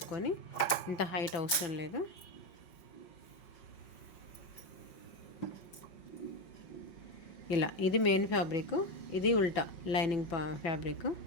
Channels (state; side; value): late; right; 5.4 ms